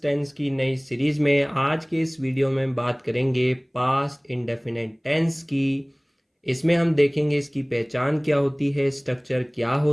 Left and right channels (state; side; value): identical; both; correlation 1.00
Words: टेंस की नई सीरीज में। आज के इस वीडियो में बात करेंगे पास्ट इंडेफिनिट टेंस की। इसमें हम देखेंगे इसकी पहचान क्या होती है, स्ट्रक्चर क्या